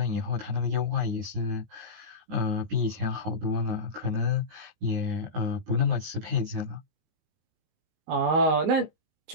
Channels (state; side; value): late; left; 19 ms